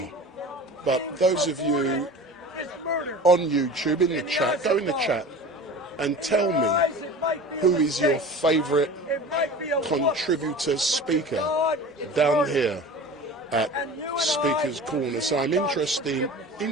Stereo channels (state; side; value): normal; both; correlation 0.37